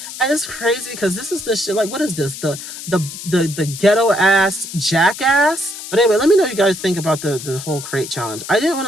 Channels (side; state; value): left; noise; hiss, 11 dB below the sound